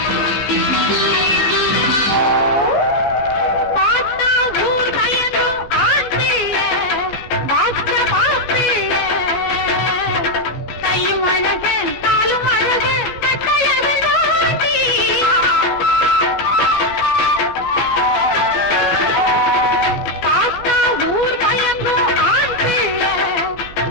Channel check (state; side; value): late; right; 14 ms